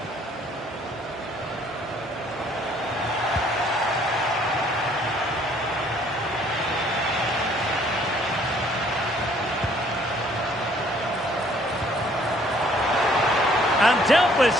And dealt with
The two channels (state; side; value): normal; both; correlation 0.61